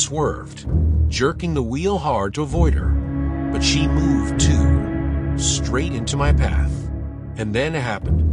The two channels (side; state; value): both; identical; correlation 1.00